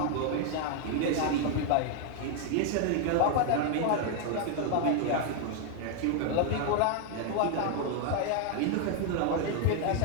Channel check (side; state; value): both; different; correlation 0.00